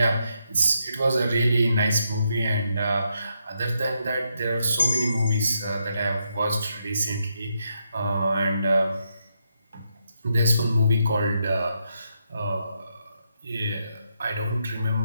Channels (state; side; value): inverted; both; correlation -0.80